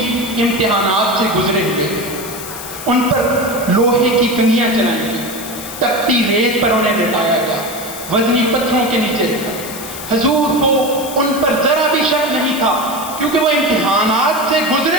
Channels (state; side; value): noise; left; hiss, 11 dB below the sound